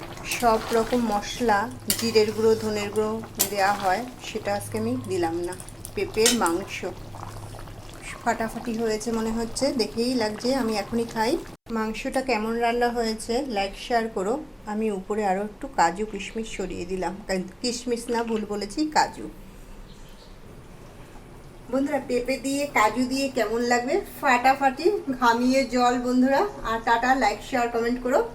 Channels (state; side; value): identical; both; correlation 1.00